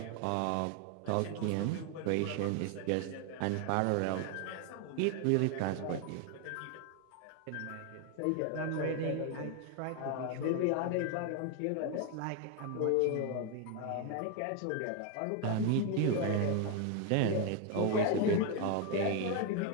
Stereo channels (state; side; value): different; both; correlation 0.01